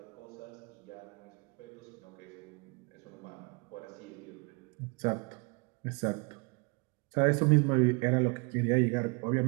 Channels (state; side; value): quieter; left; 31.7 dB